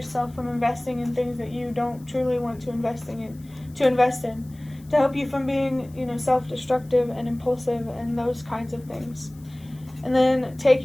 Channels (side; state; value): left; noise; hiss, 27 dB below the sound